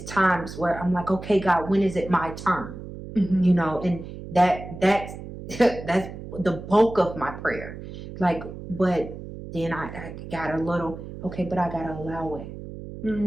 times where I'm like, okay, God, when is it my turn? You know, and that's the bulk of my prayer. Like, but then I got a little, okay, but I gotta allow it.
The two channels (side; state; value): right; noise; hum, 11 dB below the sound